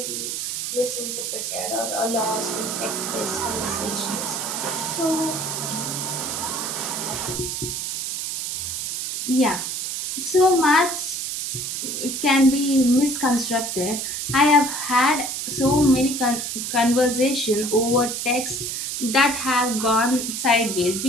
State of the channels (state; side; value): noise; right; hiss, 3 dB below the sound